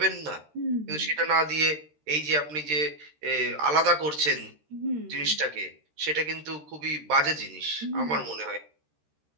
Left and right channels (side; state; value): left; late; 13 ms